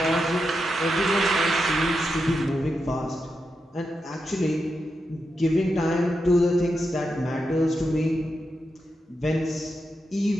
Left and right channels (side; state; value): both; normal; correlation 0.87